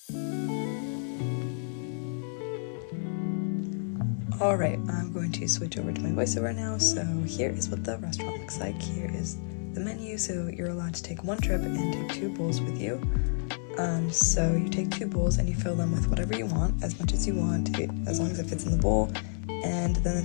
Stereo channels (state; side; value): silent; right; 58 dB below the other